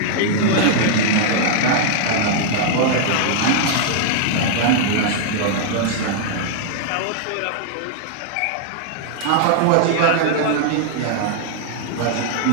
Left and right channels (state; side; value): different; both; correlation -0.01